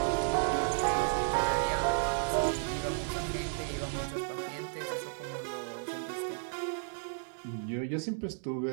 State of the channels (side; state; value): left; silent; digital silence